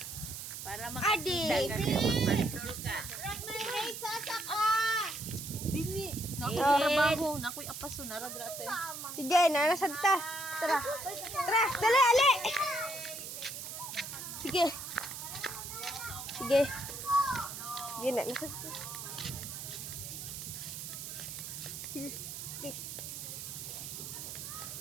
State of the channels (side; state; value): right; noise; hiss, 8 dB below the sound